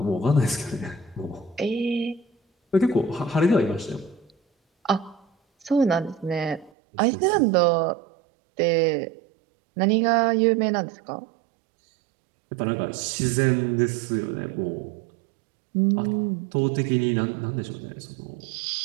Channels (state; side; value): drops out; left; at 6.7 s